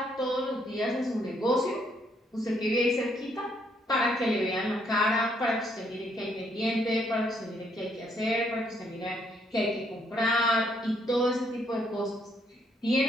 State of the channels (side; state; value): both; normal; correlation 0.71